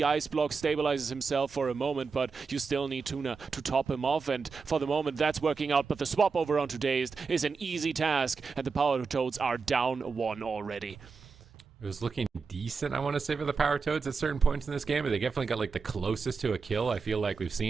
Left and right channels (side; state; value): left; quieter; 5.0 dB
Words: ice block, stabilizes himself for a moment, but you still need Tuna to top him off, and for the moment that's working out, but the swap over onto Dazed is an easy task, and the Power Toads are down 1 already. It was looking decent, I want to say, for the Power Toads at certain points in this game, but they definitely got like the closest to a kill I feel like we've